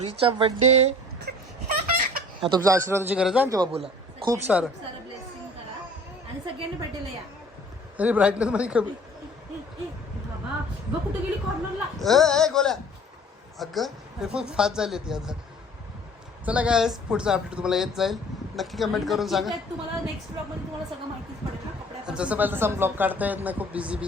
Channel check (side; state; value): both; normal; correlation 0.49